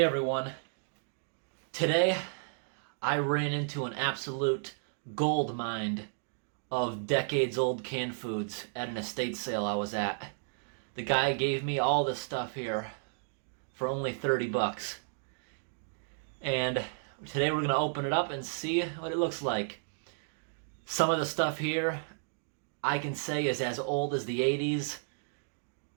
everyone. Today I ran into an absolute gold mine of decades old canned foods at an estate sale I was at. The guy gave me all this stuff here for only 30 bucks. And today we're going to open it up and see what it looks like. Some of the stuff here I can say is as old as the 80s.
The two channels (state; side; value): silent; left; digital silence